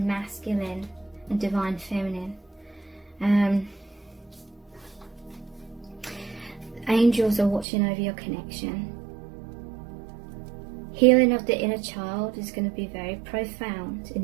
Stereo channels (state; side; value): drops out; left; at 7.7 s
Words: masculine and divine feminine. Angels are watching over your connection. Healing of the inner child is going to be very profound in